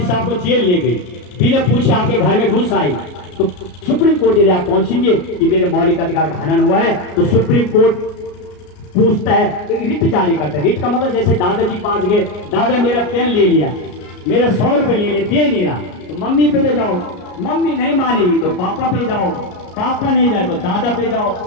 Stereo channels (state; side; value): late; right; 33 ms